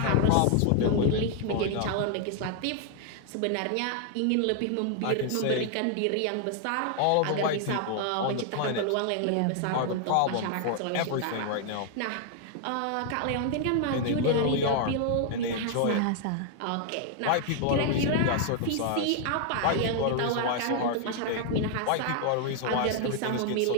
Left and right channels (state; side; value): different; both; correlation 0.00